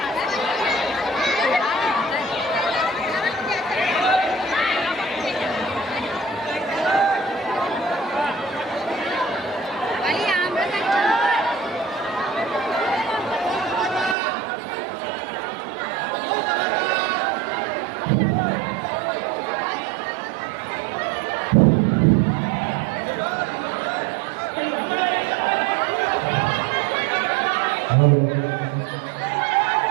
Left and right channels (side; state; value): left; drops out; at 14.2 s